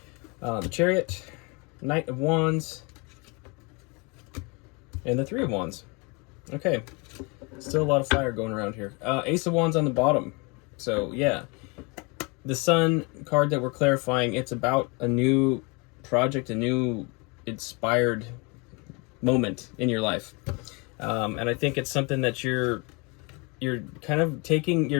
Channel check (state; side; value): quieter; right; 29.8 dB